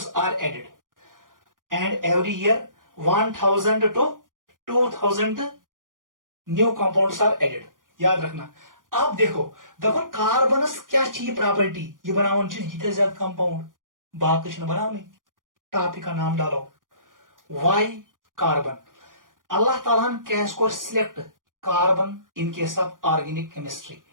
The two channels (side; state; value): left; late; 0.90 ms